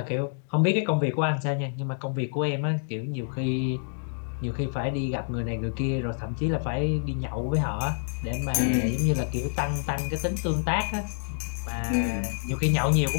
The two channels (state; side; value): silent; right; digital silence